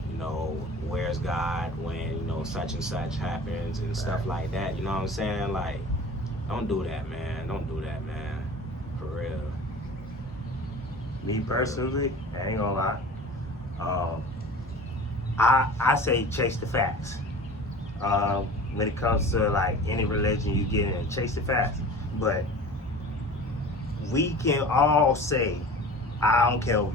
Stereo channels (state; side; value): normal; both; correlation 0.39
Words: where's God when, such and such happens and stuff like that. You know what I'm saying? Like, don't do that, man. Don't do that, man. For real. Me personally, I ain't gonna lie. I say chase the facts. When it comes to like any religion you get in, chase the facts. But we can all say, I don't care